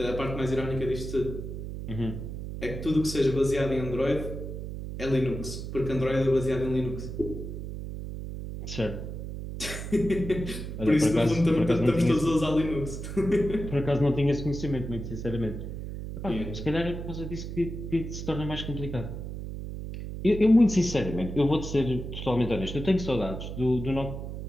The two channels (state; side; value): noise; right; hum, 7 dB below the sound